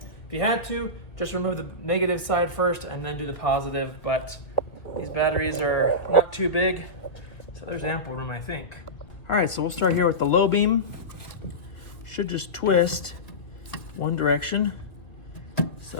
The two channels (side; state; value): right; late; 2.1 ms